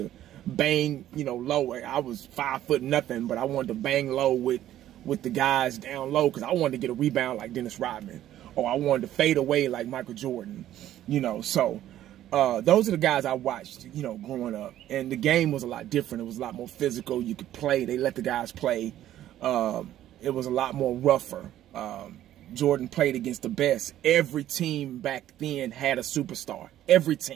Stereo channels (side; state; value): left; quieter; 12.6 dB